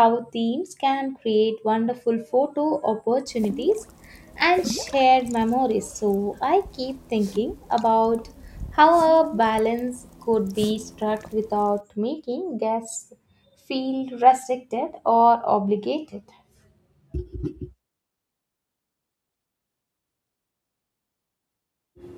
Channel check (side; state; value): both; identical; correlation 1.00